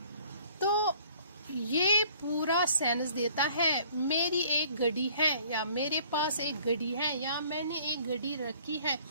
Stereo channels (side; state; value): both; inverted; correlation -0.56